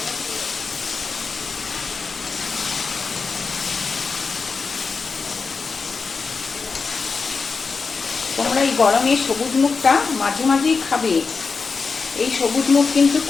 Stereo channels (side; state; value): right; quieter; 4.8 dB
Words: তোমরা এই গরমে সবুজ মুখটা মাঝে মাঝেই খাবে। এই সবুজ মুখ কিন্তু